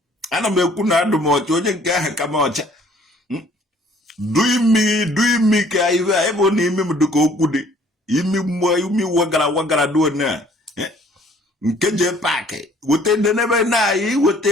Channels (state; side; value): normal; both; correlation 0.58